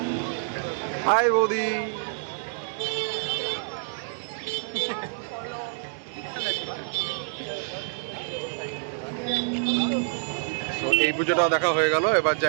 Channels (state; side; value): silent; left; digital silence